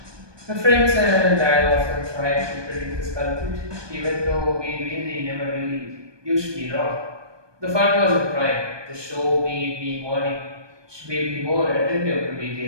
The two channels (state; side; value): late; left; 1.2 ms